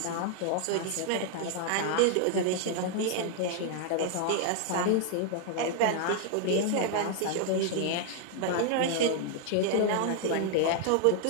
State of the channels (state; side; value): different; both; correlation 0.00